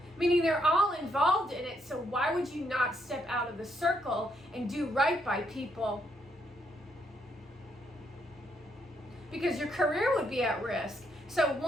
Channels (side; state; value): both; normal; correlation 0.75